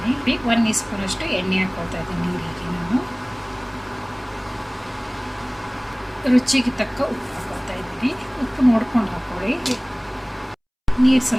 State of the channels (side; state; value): both; identical; correlation 1.00